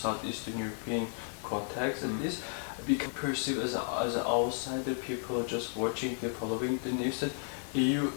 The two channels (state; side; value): silent; right; 56 dB below the other